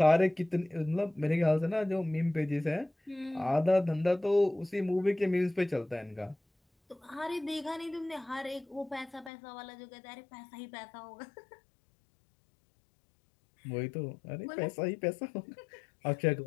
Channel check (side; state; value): right; drops out; at 9.3 s